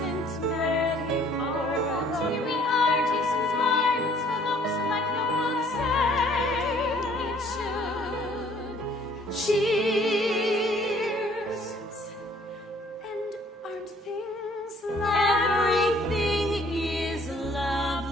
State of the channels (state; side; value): normal; both; correlation 0.59